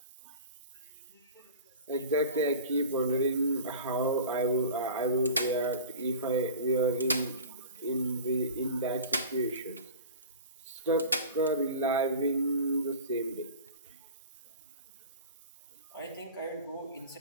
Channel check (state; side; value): inverted; both; correlation -0.36